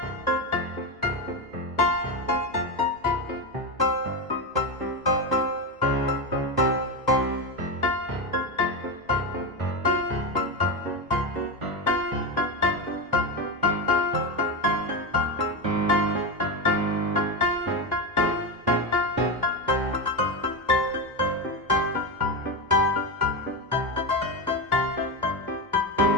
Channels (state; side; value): normal; both; correlation 0.13